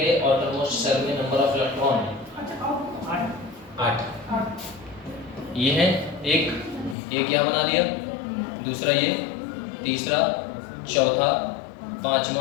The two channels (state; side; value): drops out; right; at 7.0 s